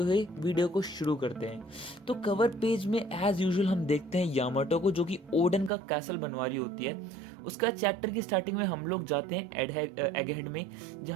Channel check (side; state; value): left; drops out; at 5.7 s